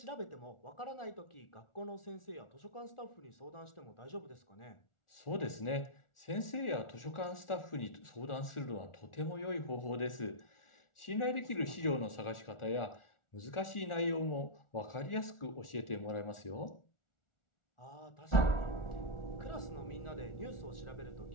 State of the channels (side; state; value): right; late; 1.4 ms